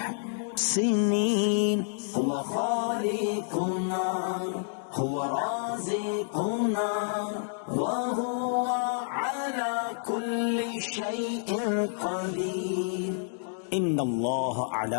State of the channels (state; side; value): silent; right; 59 dB below the other